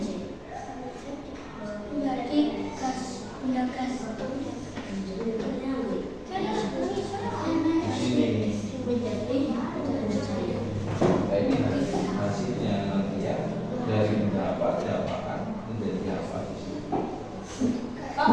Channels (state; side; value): identical; both; correlation 1.00